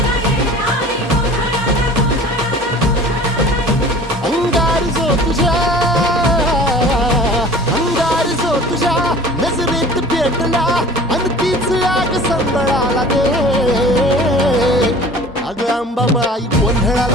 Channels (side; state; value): both; normal; correlation 0.44